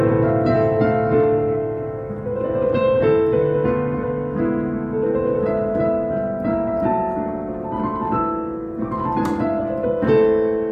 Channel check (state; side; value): identical; both; correlation 1.00